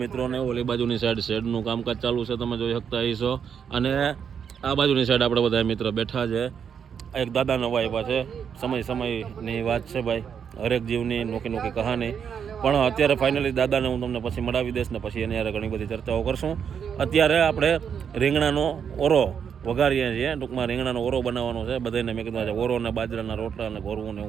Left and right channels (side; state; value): left; quieter; 7.5 dB